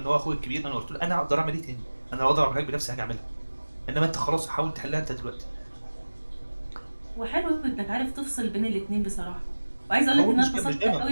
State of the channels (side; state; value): both; inverted; correlation -1.00